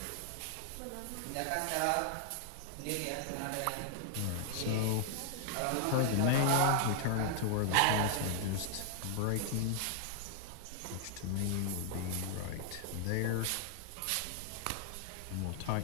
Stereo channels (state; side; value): different; both; correlation 0.00